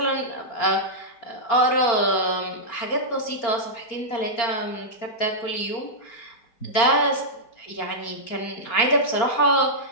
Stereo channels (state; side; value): late; right; 4.3 ms